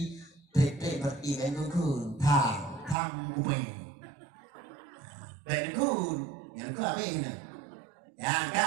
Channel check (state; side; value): drops out; left; at 3.0 s